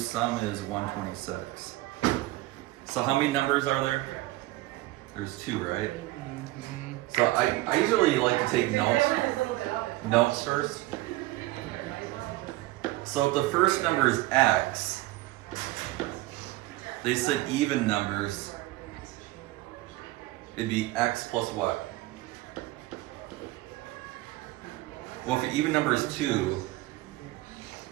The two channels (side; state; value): left; quieter; 18.6 dB